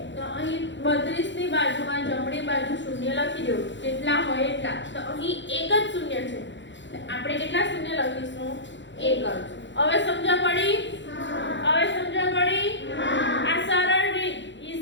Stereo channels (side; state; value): right; late; 0.53 ms